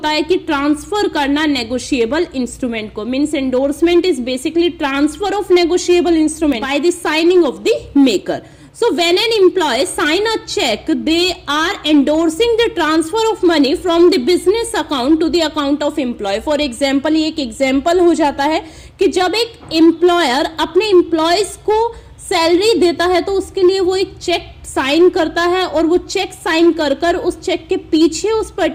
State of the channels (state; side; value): identical; both; correlation 1.00